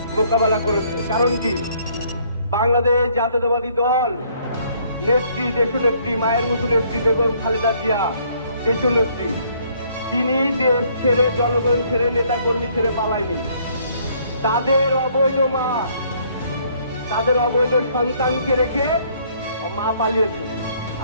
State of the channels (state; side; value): inverted; both; correlation -0.64